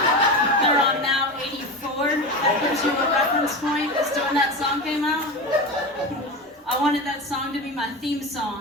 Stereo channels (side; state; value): both; normal; correlation 0.24